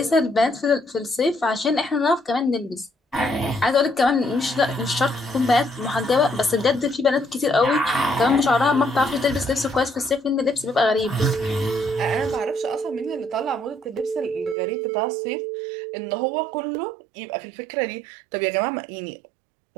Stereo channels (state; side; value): drops out; left; at 14.6 s